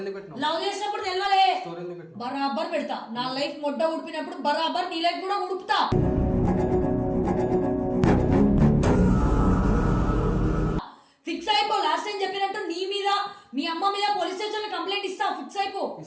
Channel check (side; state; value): both; identical; correlation 1.00